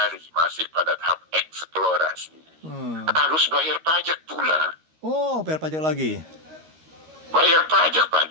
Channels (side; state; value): left; late; 13 ms